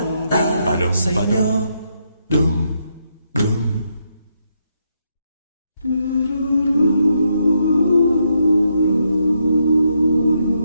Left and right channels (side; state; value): both; inverted; correlation -0.79